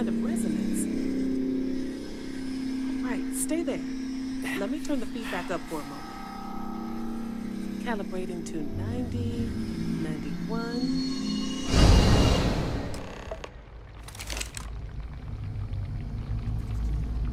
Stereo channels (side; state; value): both; identical; correlation 1.00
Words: of resonance. Right, stay there. Let me turn the feedback up for a moment. Calibrating to 90, 91.